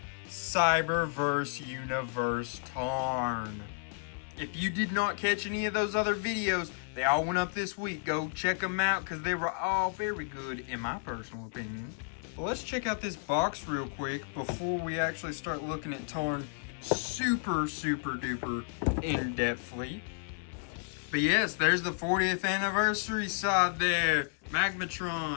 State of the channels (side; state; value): right; silent; 56 dB below the other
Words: Cyberverse Universe Tarn. If you did not catch any of those other videos, they all went up this week. Go check them out because they were all very good in my personal opinion. Well, let's check out this box real quick before we actually start looking at Tarn super duper in-depthly. But yes, there's the 40th anniversary side there.